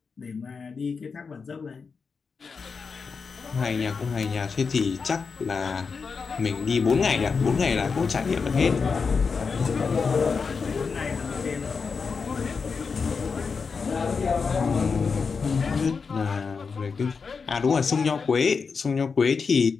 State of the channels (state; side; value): quieter; right; 5.2 dB